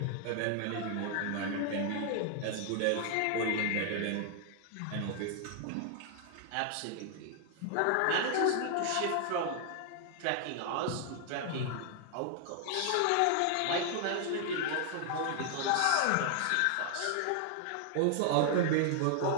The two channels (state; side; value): different; both; correlation 0.00